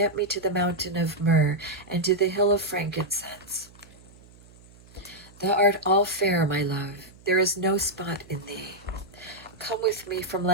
me to the mountain of myrrh and to the hill of frankincense. Thou art all fair, my love, there is no spot in thee. Come with me from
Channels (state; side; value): noise; right; hum, 24 dB below the sound